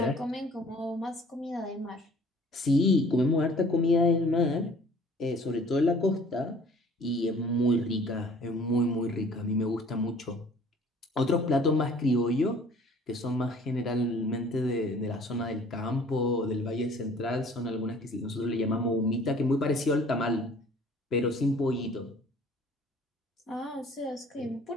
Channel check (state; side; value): normal; both; correlation 0.53